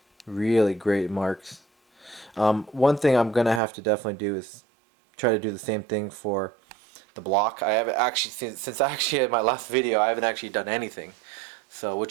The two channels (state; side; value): drops out; left; at 3.6 s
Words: really great marks. One thing I'm gonna have to definitely do is try to do the same thing for the block. I haven't actually since I actually had my last video. I haven't actually done anything, so